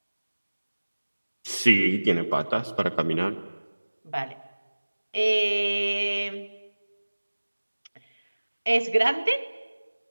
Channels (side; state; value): both; inverted; correlation -1.00